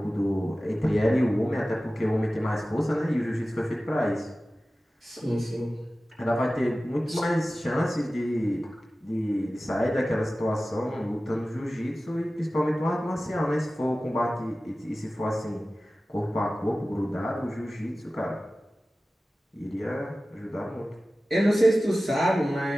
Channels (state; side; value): normal; both; correlation 0.96